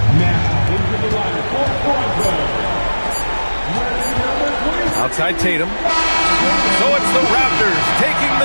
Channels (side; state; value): both; inverted; correlation -1.00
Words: Now, into the line for Toronto. Outside Tatum. So it's the Raptors taking